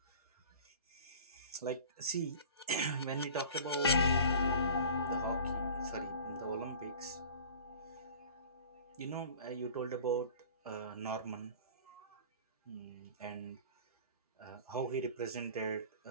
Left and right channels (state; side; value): inverted; both; correlation -0.43